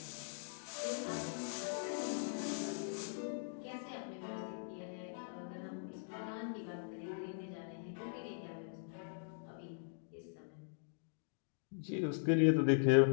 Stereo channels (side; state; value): right; silent; digital silence